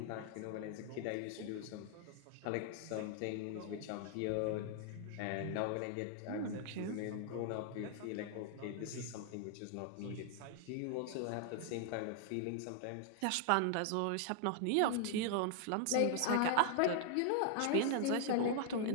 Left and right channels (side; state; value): both; different; correlation 0.00